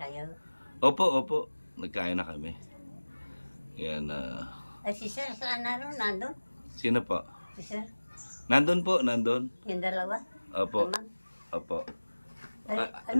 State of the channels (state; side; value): inverted; both; correlation -1.00